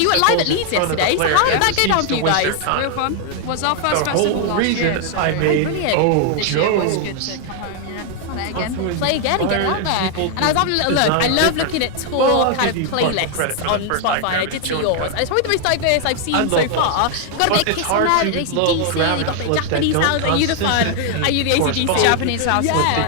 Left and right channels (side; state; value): both; different; correlation 0.00